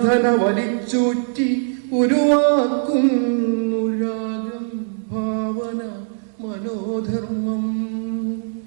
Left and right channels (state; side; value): silent; left; digital silence